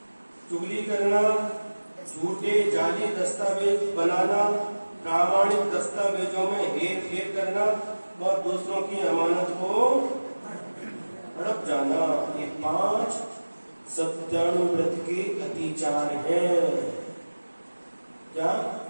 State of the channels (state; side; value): inverted; both; correlation -1.00